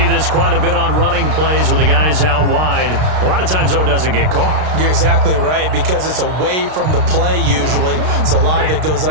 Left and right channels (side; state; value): left; late; 32 ms